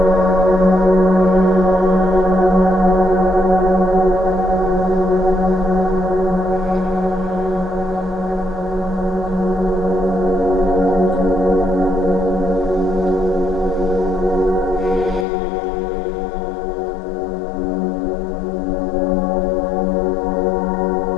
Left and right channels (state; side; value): drops out; right; at 15.2 s